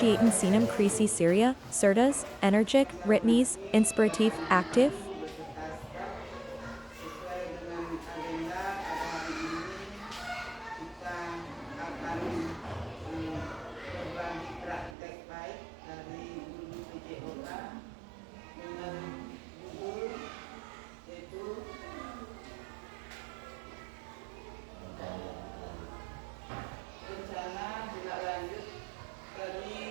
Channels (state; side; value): drops out; left; at 15.0 s